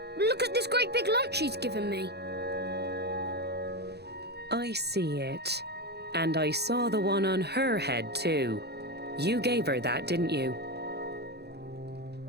Look at this great big lump she's given me. I see it. And I saw the one on her head too. You gave her that, didn't you?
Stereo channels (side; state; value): left; late; 0.48 ms